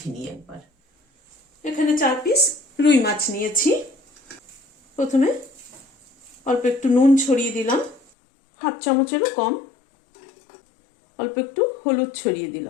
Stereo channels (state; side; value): drops out; right; at 8.1 s